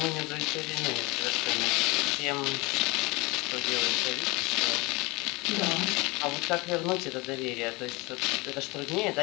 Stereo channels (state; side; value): quieter; right; 24.8 dB